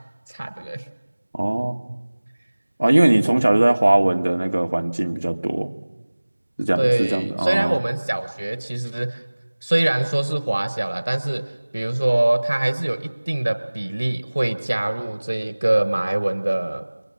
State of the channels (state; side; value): inverted; both; correlation -1.00